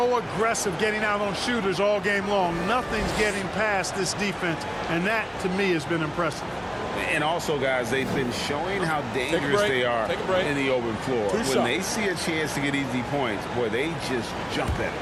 aggressive getting out on shooters all game long. Nothing's getting past this defense, and that, to me, has been impressive. And also, guys, they've been showing how dangerous they are in the open floor. When they see a chance to get easy points, boy, they just jump at it.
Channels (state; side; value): identical; both; correlation 1.00